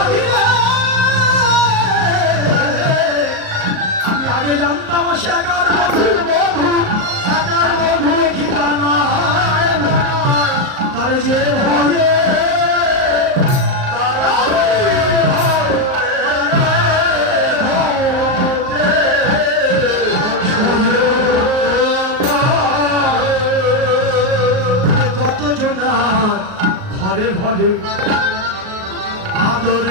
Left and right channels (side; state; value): left; late; 38 ms